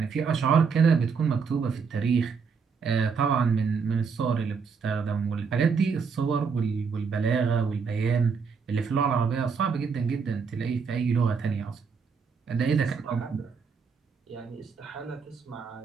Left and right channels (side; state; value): left; quieter; 5.6 dB